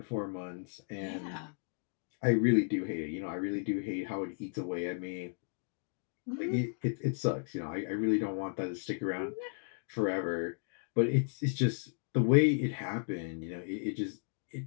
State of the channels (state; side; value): silent; right; digital silence